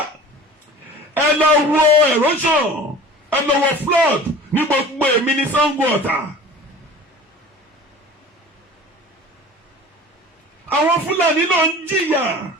Ẹ lọ wo erosion, ẹ lọ wo flood ní gbogbo èmi ní Sango Ọ̀tà. Àwọn Fúlàní ló ń jìyà.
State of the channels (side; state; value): both; normal; correlation 0.41